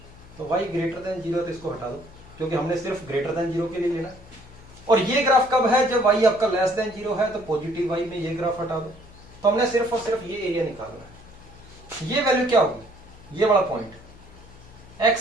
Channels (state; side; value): noise; left; hum, 21 dB below the sound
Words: तो y ग्रेटर देन 0 है तो इसको हटा दो क्योंकि हमने सिर्फ ग्रेटर देन 0 के लिए लेना है। और ये ग्राफ कब है? जब y आपका लेस देन 0 है, तो पॉजिटिव y में ये ग्राफ हटा दो। तो हमने सिर्फ और सिर्फ ये एरिया निकालना है। ये वैल्यू क्या होगी? ये वाला पॉइंट